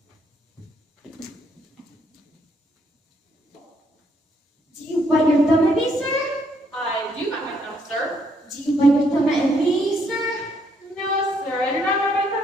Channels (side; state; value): both; normal; correlation 0.71